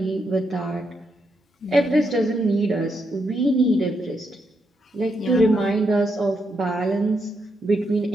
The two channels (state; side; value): normal; both; correlation 0.80